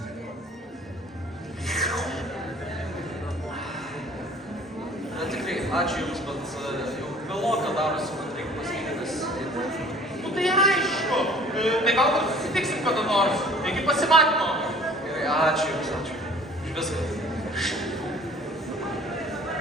Na tikrai, ačiū Jums, bet jau vėloka darosi, man reikia pasakyti. Nu tai aišku. Tai galbūt susitiksim kada nors. Iki pasimatymo. Gerai, ačiū Jums, ačiū. Už viską.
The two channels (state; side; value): normal; both; correlation 0.51